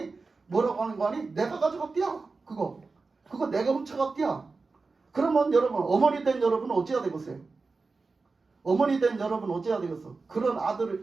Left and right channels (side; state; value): left; quieter; 4.0 dB